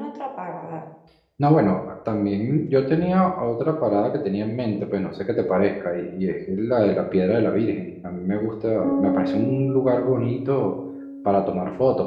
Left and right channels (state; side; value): identical; both; correlation 1.00